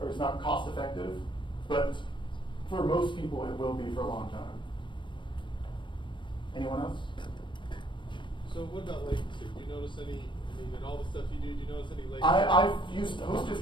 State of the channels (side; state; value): right; late; 0.23 ms